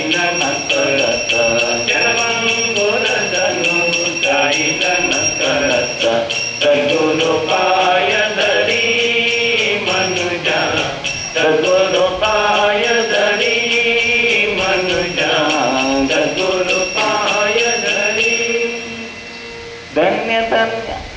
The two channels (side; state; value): both; identical; correlation 1.00